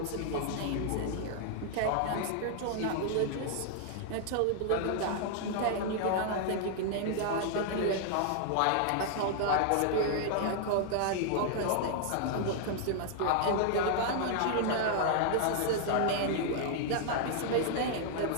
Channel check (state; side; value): different; both; correlation -0.01